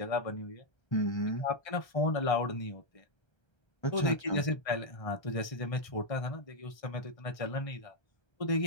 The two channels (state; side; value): late; right; 1.3 ms